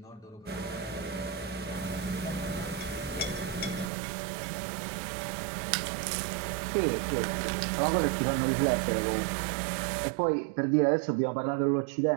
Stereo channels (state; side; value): drops out; left; at 3.9 s